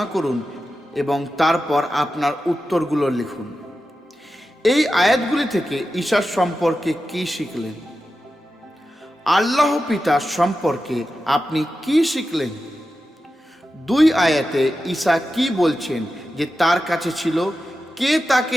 করুন এবং তারপর আপনার উত্তরগুলো লিখুন। এই আয়াতগুলি থেকে ঈসার সম্পর্কে কি শিখলেন? আল্লাহ পিতার সম্পর্কে আপনি কি শিখলেন? 2 আয়াতে ঈসা কি বলছেন যে তার কাছে ছিল, কে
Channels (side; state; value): both; normal; correlation 0.91